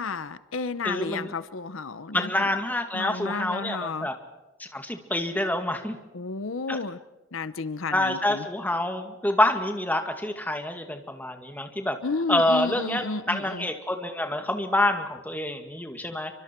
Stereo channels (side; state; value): both; normal; correlation 0.63